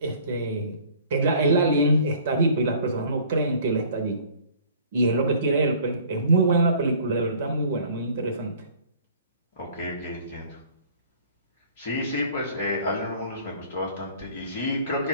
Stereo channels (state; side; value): inverted; both; correlation -0.52